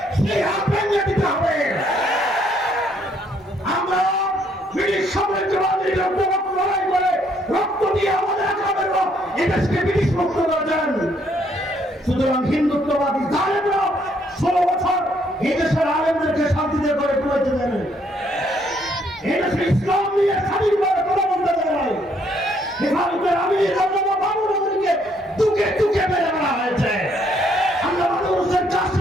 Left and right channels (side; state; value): both; normal; correlation 0.69